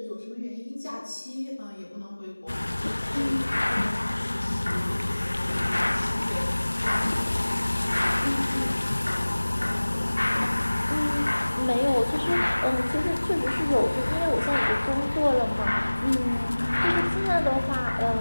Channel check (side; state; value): both; inverted; correlation -1.00